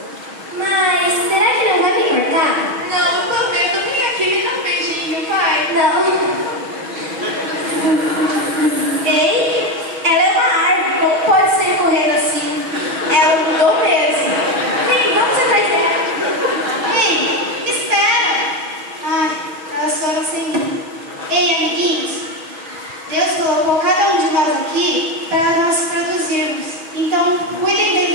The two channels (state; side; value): late; left; 6.3 ms